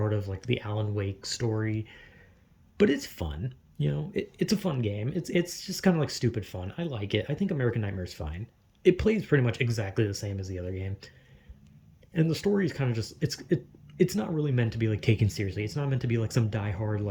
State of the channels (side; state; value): both; identical; correlation 1.00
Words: of, like, the Alan Wake story. But it's fun. it's a fun game. It's just kind of like stupid fun. I like it. I think American Nightmare is fine. It plays pretty much exactly the same as the other game, and the story is kind of just it's not really meant to be like taken seriously. It's not meant to be like some diehard